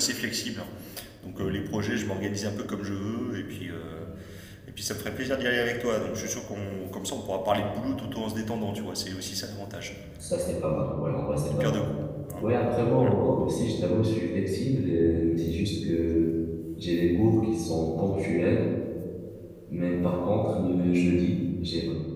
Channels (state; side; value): identical; both; correlation 1.00